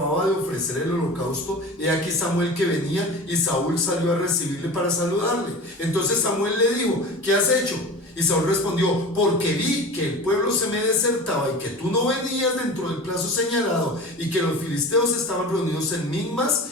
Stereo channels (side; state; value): both; normal; correlation 0.34